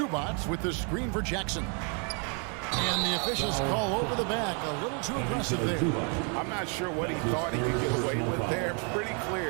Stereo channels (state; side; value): quieter; left; 37.7 dB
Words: with the screen for Jackson. And the officials call over the back. A little too aggressive there. I'm not sure what he thought he could get away with there. Pretty